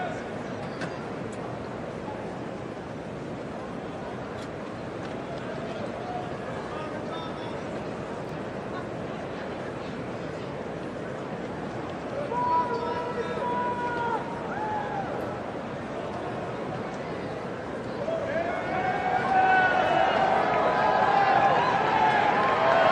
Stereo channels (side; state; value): both; identical; correlation 1.00